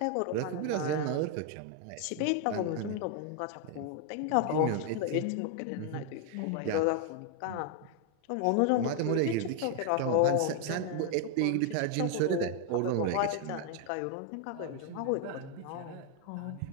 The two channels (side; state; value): both; different; correlation 0.00